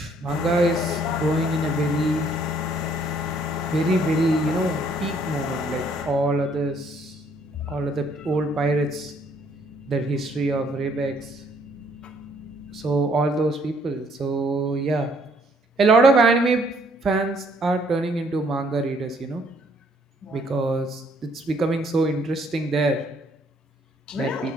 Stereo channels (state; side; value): normal; both; correlation 0.65